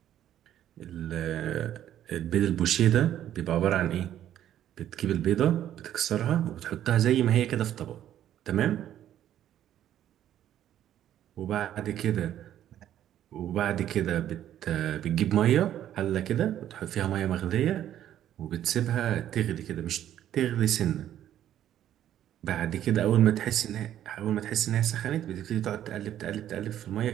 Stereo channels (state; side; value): quieter; left; 11.4 dB